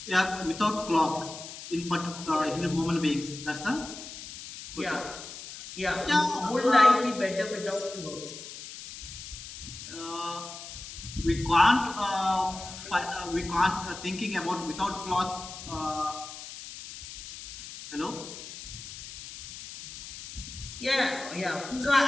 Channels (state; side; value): noise; left; hiss, 12 dB below the sound